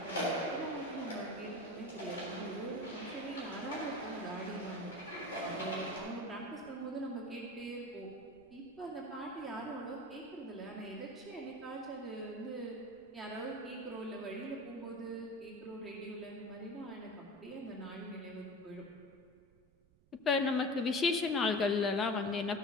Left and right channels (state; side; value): noise; right; rumble, 29 dB below the sound